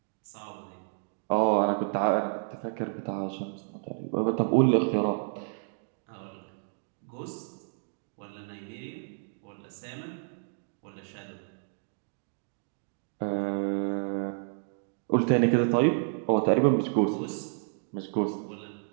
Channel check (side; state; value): left; silent; digital silence